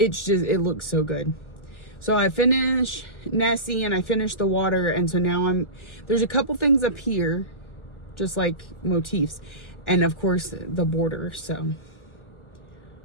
looks so good. So I finished Nessie and I finished the water, and so now there's a couple things up here, just like motifs, and of course the border. So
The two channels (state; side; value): late; right; 1.4 ms